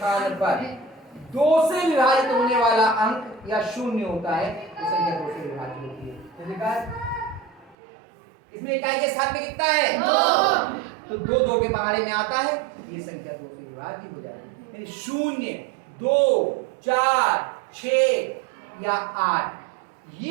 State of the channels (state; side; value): drops out; left; at 7.8 s